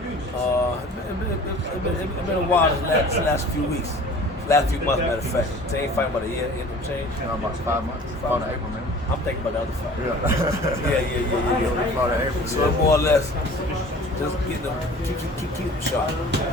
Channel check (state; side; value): normal; both; correlation 0.45